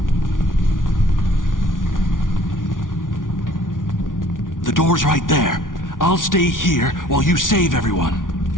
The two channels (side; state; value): right; late; 0.88 ms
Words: The door's right there. I'll stay here while you save everyone.